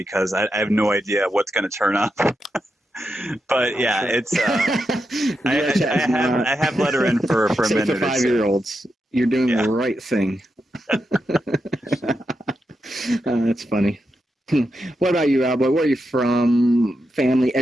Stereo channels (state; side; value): normal; both; correlation 0.86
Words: I have no idea what's going to turn up. But yeah, it's I have let her in for a minute. For 5-year-olds, you're doing the right thing. That's funny. What about you, Owlboy? Where are you from? Family,